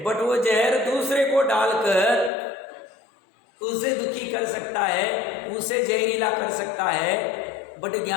बट वो जहर दूसरे को डालकर उसे दुखी कर सकता है, उसे जहरीला कर सकता है। बट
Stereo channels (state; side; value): drops out; right; at 2.3 s